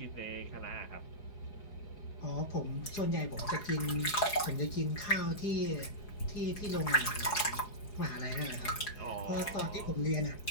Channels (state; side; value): late; right; 4.7 ms